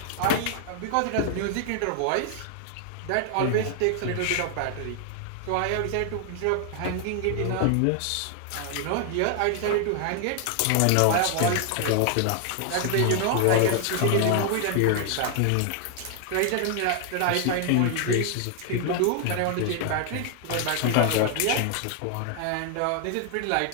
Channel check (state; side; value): different; both; correlation 0.00